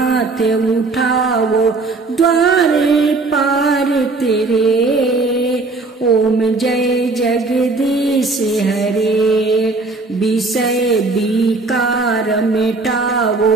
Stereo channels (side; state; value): left; quieter; 3.6 dB